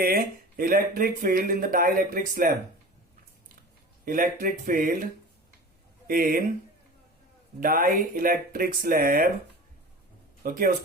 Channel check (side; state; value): both; normal; correlation 0.36